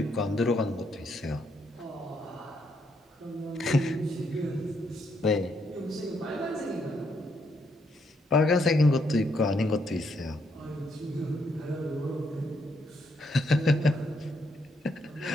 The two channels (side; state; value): both; normal; correlation 0.75